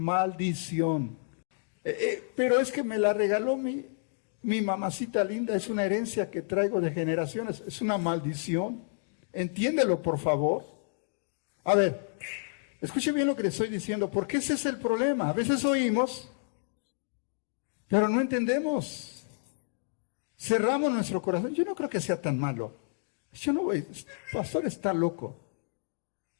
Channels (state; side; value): silent; right; digital silence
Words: Pero es que me la regaló mi mamacita linda, es una herencia que traigo de generaciones, es una maldición. Entiéndelo, por favor. A ver, escuche bien lo que le estoy diciendo, porque ese es el problema. A veces oímos, pero no entendemos. Cerramos nuestro corazón. Yo no creo que sea tan malo. Yo no voy, pastor está loco.